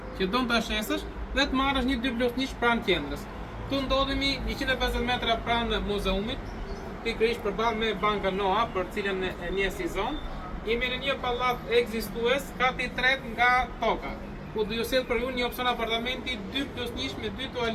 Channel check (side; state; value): both; identical; correlation 1.00